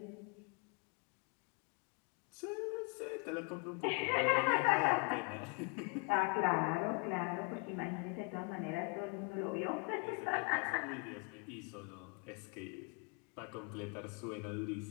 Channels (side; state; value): right; quieter; 31.1 dB